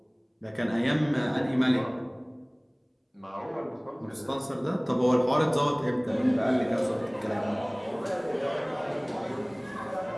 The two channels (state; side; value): identical; both; correlation 1.00